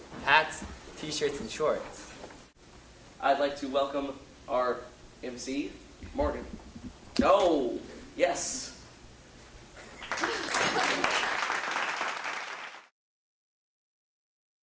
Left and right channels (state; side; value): identical; both; correlation 1.00